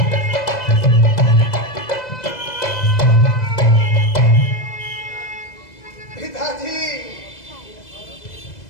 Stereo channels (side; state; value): right; late; 2.0 ms